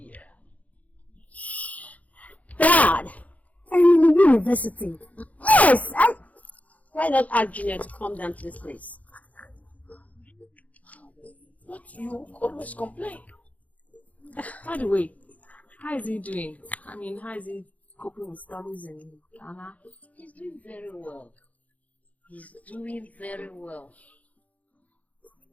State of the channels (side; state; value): right; late; 0.071 ms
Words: Dad! I'm in the university. Yes! Why not ask Junior to come down to this place? But you always complain. By the way, how is he doing? I mean, how is he coping with studies in Ghana? He's doing very well. He's doing very well.